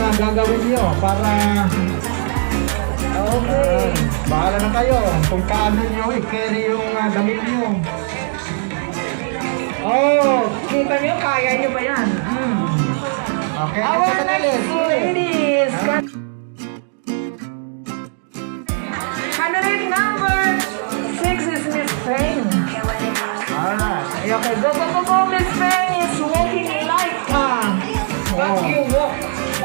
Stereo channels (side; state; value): left; silent; 67 dB below the other